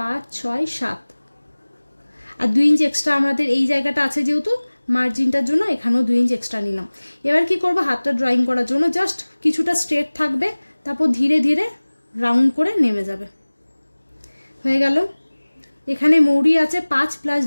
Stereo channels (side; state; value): both; inverted; correlation -1.00